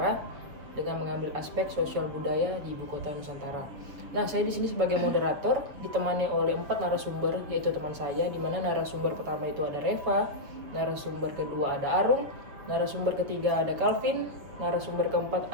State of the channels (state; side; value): late; left; 7.0 ms